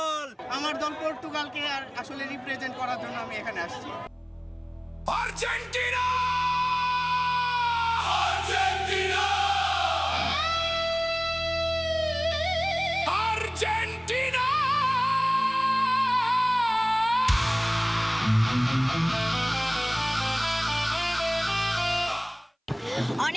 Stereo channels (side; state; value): both; identical; correlation 1.00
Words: আমার দল পর্তুগালকে আর আসলে রিপ্রেজেন্ট করার জন্য আমি এখানে আসছি। আর্জেন্টিনা আর্জেন্টিনা আর্জেন্টিনা